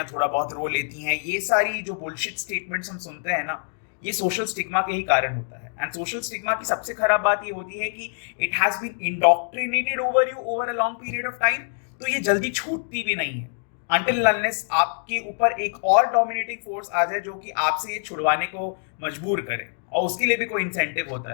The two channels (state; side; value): silent; right; digital silence